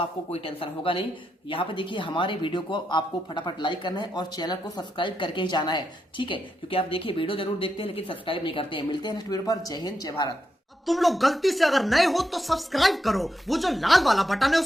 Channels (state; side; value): normal; both; correlation 0.84